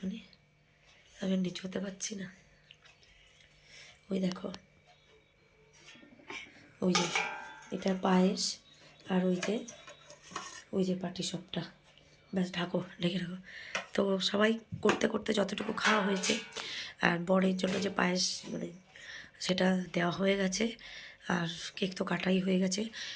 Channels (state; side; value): identical; both; correlation 1.00